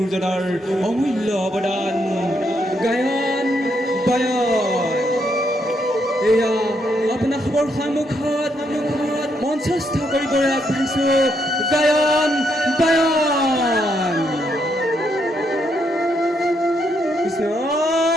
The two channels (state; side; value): normal; both; correlation 0.77